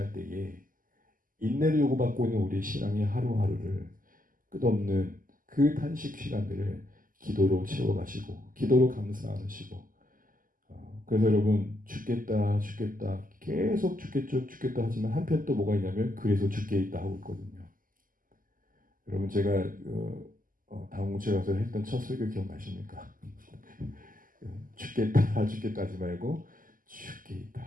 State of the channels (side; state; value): left; late; 0.41 ms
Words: 때에 인내를 요구받고 있는 우리의 신앙의 하루하루를 끝없는 그 탄식 시간들을 기도로 채워가시고 기도로 감사하시고 그래서 여러분 죽겠다 계속 죽겠다 하지만 한편 또 뭐가 있냐면 그래서 죽게 있다 하고 있거든요. 여러분 제가 당공체 가서 했던 첫 설교 기억나십니까? 죽겠다 하지 말고 죽게